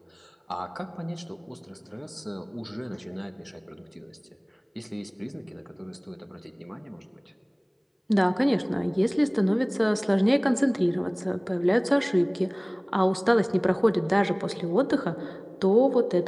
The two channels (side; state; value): both; identical; correlation 1.00